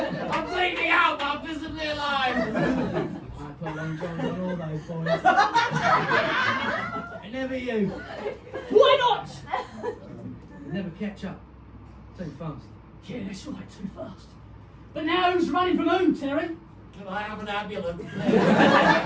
I'm bleeding out, but I'm visibly alive! I put long johns on all those boys. And never you. Why not? Never catch up. Too fast. Yeah, that's right, too fast. But now who's running from who, Terry? Can I have an ambulance?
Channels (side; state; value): both; identical; correlation 1.00